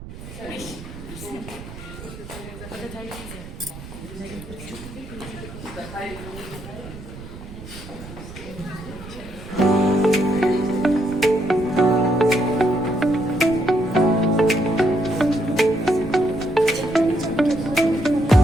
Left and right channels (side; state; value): right; noise; rumble, 14 dB below the sound